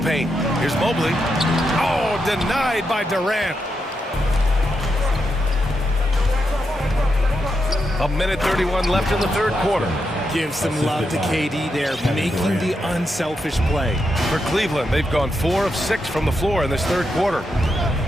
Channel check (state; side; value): normal; both; correlation 0.84